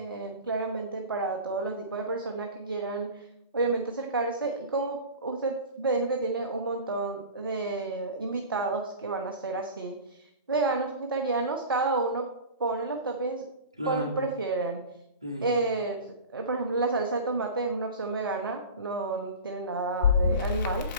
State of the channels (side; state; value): both; inverted; correlation -0.33